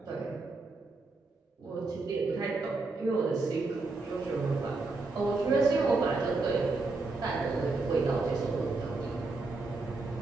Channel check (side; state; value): left; quieter; 3.6 dB